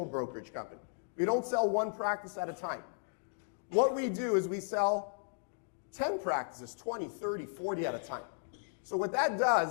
brokerage company. We don't sell one practice at a time. What we do is we sell 10 practices, 20, 30, 40 at a time. So what that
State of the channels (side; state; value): right; silent; digital silence